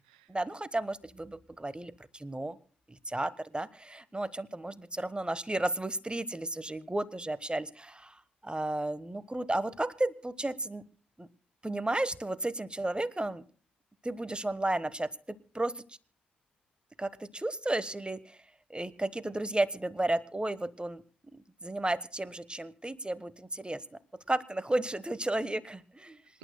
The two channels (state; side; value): normal; both; correlation 0.87